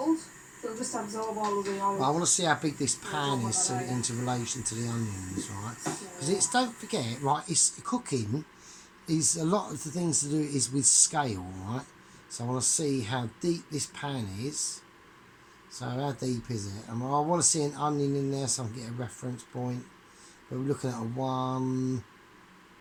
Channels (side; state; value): both; identical; correlation 1.00